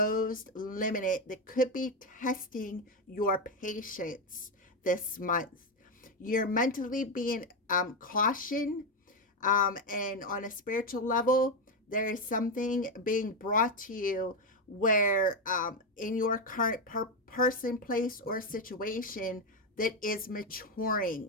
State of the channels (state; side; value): normal; both; correlation 0.09